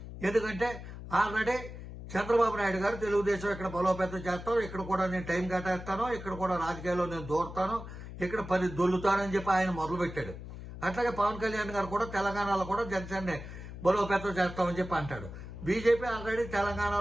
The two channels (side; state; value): left; noise; hum, 11 dB below the sound